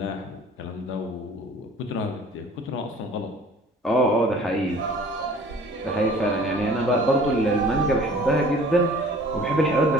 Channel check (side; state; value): both; normal; correlation 0.49